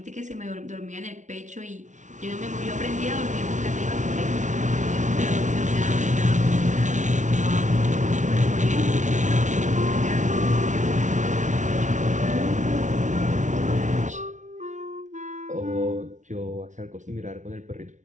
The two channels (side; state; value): left; late; 0.36 ms